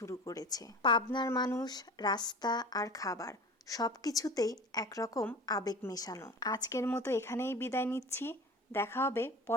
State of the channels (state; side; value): normal; both; correlation 0.37